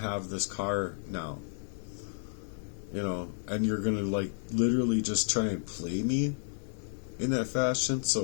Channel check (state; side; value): silent; right; 56 dB below the other